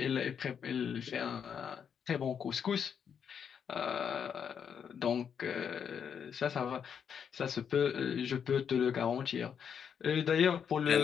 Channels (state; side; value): quieter; right; 7.5 dB